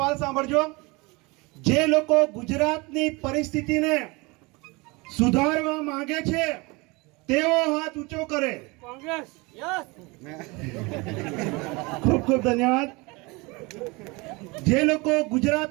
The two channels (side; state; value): left; quieter; 25.8 dB